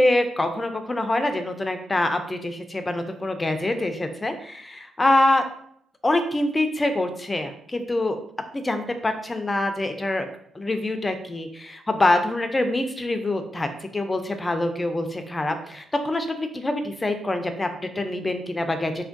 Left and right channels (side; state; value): both; normal; correlation 0.92